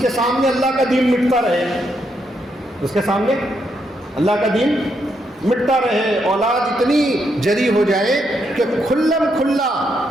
کے سامنے اللہ کا دین مٹتا رہے, اس کے سامنے اللہ کا دین مٹتا رہے. اولاد اتنی جری ہو جائے کہ کھلم کھلا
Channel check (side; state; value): both; normal; correlation 0.78